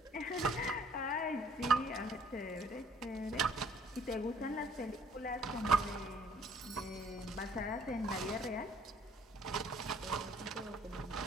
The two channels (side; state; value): both; normal; correlation 0.59